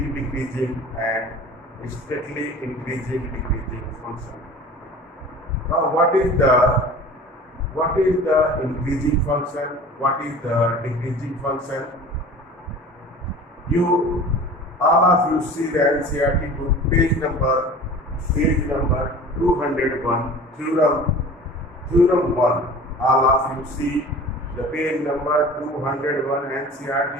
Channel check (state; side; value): normal; both; correlation 0.41